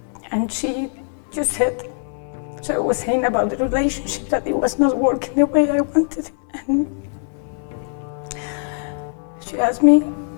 she just said, so I was saying about the relationship that it was not working the way I wanted it, and she asked me,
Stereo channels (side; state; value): right; silent; digital silence